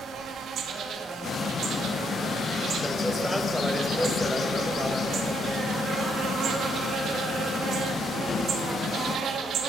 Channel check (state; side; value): normal; both; correlation 0.74